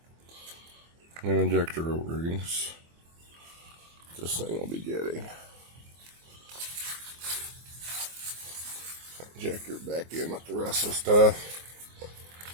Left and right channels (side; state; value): left; late; 24 ms